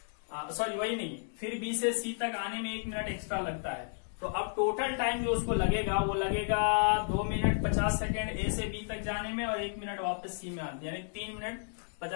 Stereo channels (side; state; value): right; silent; 56 dB below the other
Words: सॉरी वही नहीं, फिर बी से सी तक आने में 1 मिनट एक्स्ट्रा लगता है। तो अब टोटल टाइम जो उसको लगेगा वो लगेगा 2 मिनट 50 सेकेंड ए से बी तक जाने में, और 1 मिनट वापस सी में आने, यानी 3 मिनट